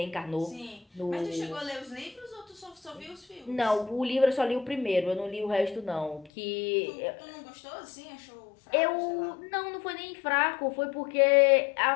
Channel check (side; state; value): right; drops out; at 6.3 s